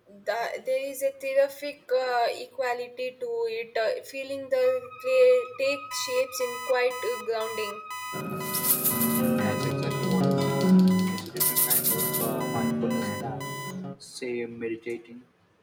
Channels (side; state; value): both; identical; correlation 1.00